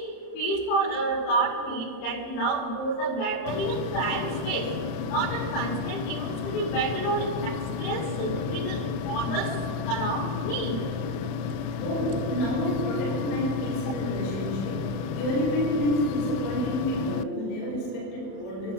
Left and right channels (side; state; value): right; late; 32 ms